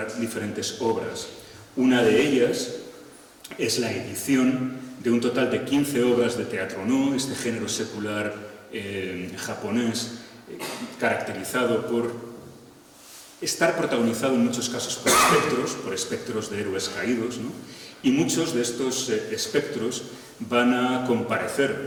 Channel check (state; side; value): identical; both; correlation 1.00